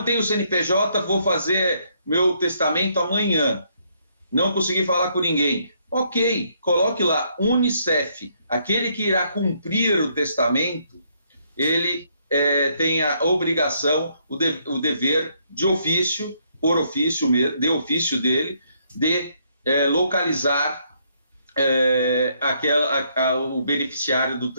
tenho CNPJ, vou fazer meu testamento amanhã. Não consegui falar com ninguém. Ok, coloque lá Unicef. Aquele que irá cumprir o testamento, ele tem a obrigação, o dever de ofício, por ofício, de ofício dele, de localizar o beneficiário do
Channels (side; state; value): both; inverted; correlation -0.71